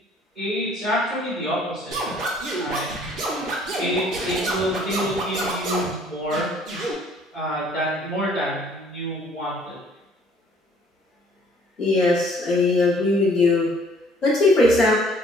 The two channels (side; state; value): both; normal; correlation 0.58